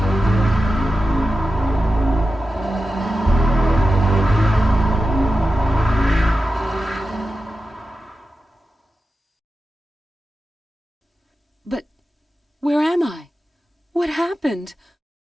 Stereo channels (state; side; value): normal; both; correlation 0.92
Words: But where am I? What happened?